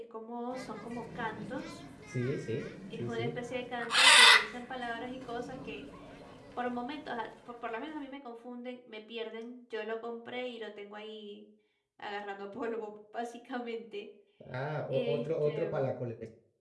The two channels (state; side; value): identical; both; correlation 1.00